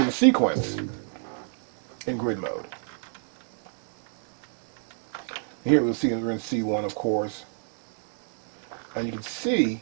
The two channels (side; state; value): left; silent; digital silence